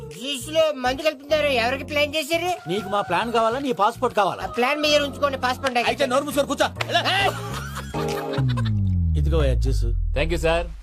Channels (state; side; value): identical; both; correlation 1.00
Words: జ్యూస్ లో మందు కలుపుతున్నారు. ఎవరికి ప్లాన్ చేశారు? నీకు మా ప్లాన్ కావాలా, నీ పాస్పోర్ట్ కావాలా? ఆ ప్లాన్ మీద ఉంచుకోండి. పాస్పోర్ట్ అయితే నోరు మూసుకొని కూర్చో. ఇదిగో జ్యూస్. Thank you sir.